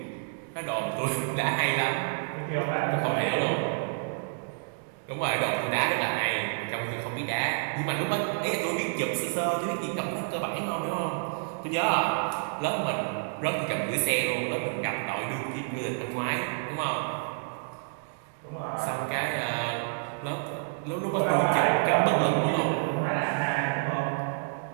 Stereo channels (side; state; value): left; silent; digital silence